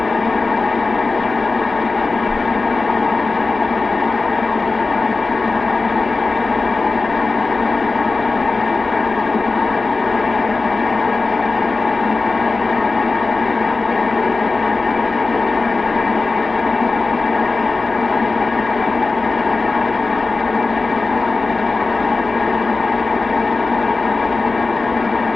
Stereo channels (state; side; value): quieter; right; 3.7 dB